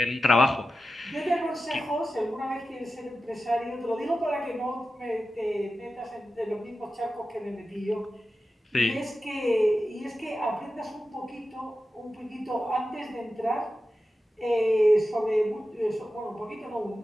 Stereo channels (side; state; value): both; normal; correlation 0.92